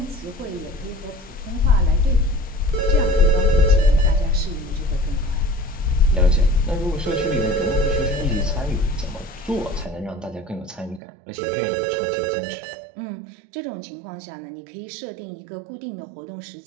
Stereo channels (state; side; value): drops out; left; at 11.0 s